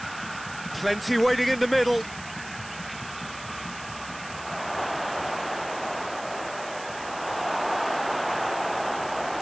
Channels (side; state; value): right; noise; hiss, 15 dB below the sound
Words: Plenty waiting in the middle.